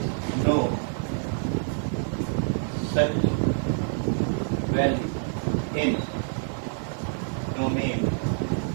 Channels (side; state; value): left; silent; 60 dB below the other